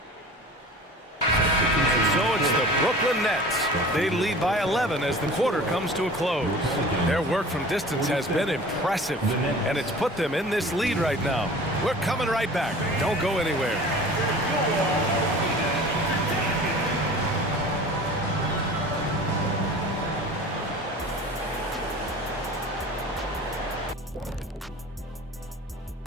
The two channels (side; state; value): both; normal; correlation 0.41